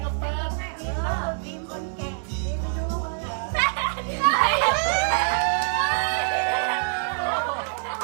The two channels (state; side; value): silent; left; digital silence